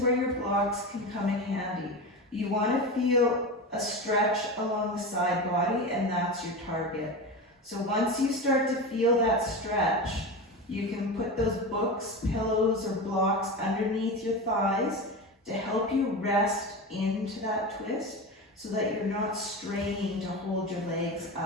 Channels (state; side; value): normal; both; correlation 0.23